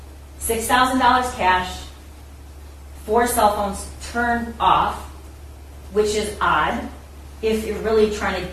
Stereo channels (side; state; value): both; identical; correlation 1.00